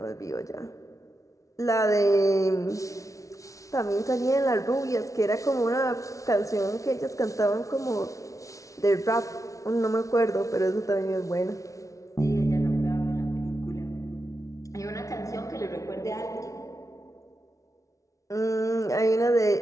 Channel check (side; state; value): right; late; 0.16 ms